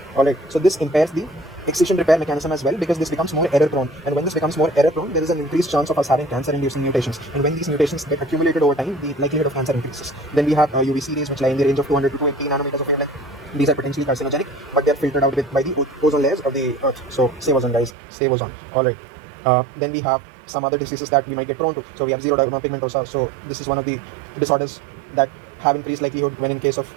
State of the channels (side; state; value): left; drops out; at 17.9 s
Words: Alright, so this impairs the excision repair mechanism as well, because this becomes more error prone. And when this becomes more error prone, there is an increased chance of us having cancer inducing mutations. And when these mutations get accumulated over time, the likelihood of cancer increases. Then we have UVC rays, which lie in the range of 200 to 280 nanometers of wavelength. These are potentially carcinogenic, but they are filtered out by the ozone layers of the earth. So save ozone, guys, save ozone. Alright, then we have some other diseases that we might get prone to. So we have xeroderma pigmentosa. So this is one of the disorders that have increased likelihood when in case of